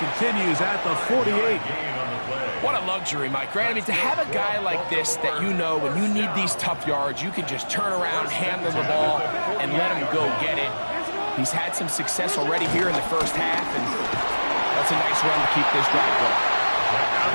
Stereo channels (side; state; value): both; inverted; correlation -1.00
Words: at the 48. What a luxury, Mike, right? I mean, to have a guy like this that you know when you need these tough yards, you can just turn around, hand them the ball, and let him go get it. He's had some success already here in the first half, and that's a nice run to keep this drive going. Now